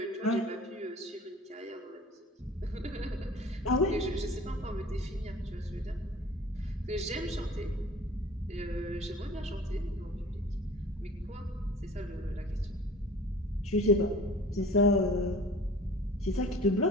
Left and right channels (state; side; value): normal; both; correlation 0.45